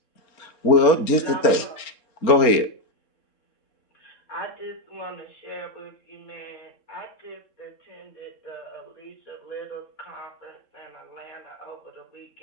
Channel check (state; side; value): late; right; 3.7 ms